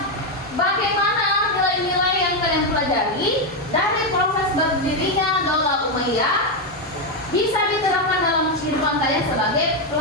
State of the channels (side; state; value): both; normal; correlation 0.05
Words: bagaimana nilai-nilai yang kalian pelajari dari proses berdirinya Daulah Umayyah bisa diterapkan dalam kehidupan kalian sebagai